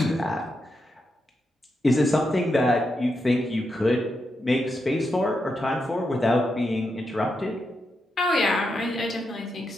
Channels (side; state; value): both; normal; correlation 0.85